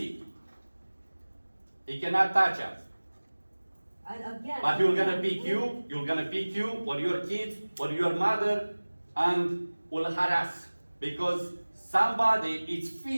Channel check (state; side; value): inverted; both; correlation -1.00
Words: He cannot touch us. And again. But you're gonna pick you or your kids or your mother and will harass. Because somebody is